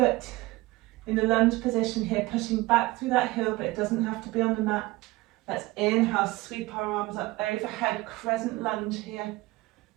in the lunge position here, pushing back through that heel, but it doesn't have to be on the mat. Let's inhale, sweep our arms up overhead, crescent lunge here.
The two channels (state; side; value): quieter; left; 20.2 dB